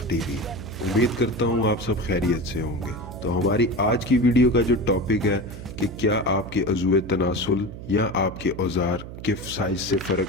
TV. उम्मीद करता हूँ आप सब खैरियत से होंगे। तो हमारी आज की वीडियो का जो टॉपिक है कि क्या आपके अज़ुए तनासुल या आपके औजार के साइज से फ़र्क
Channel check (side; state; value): right; noise; hum, 12 dB below the sound